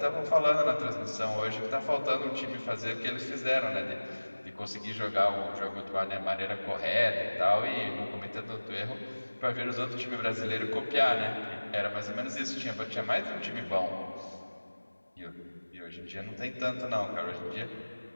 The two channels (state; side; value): inverted; both; correlation -1.00